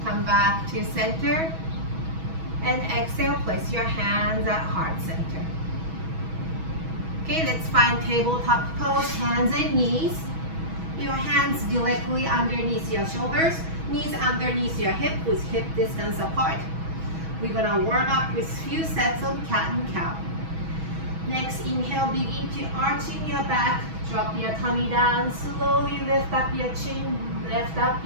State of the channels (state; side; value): late; left; 6.2 ms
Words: Come back to center and exhale, place your hands at heart center. Okay, let's find tabletop pose, hands and knees. Your hands directly underneath your shoulders, knees underneath your hip with hip distance apart. We're gonna warm up with few sets of cat and cow. Next, inhale, begin to arching your back, drop your tummy down, slowly lift up your chin, lift up